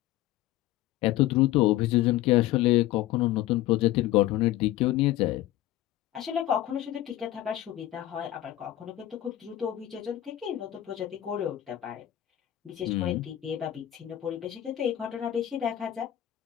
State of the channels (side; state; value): right; quieter; 14.1 dB